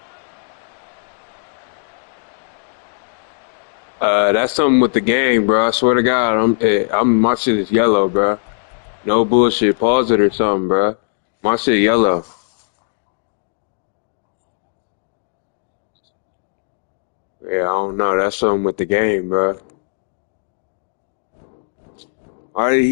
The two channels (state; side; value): silent; right; digital silence